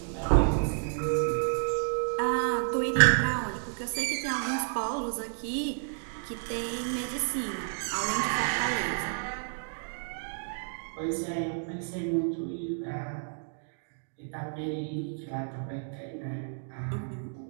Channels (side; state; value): left; silent; digital silence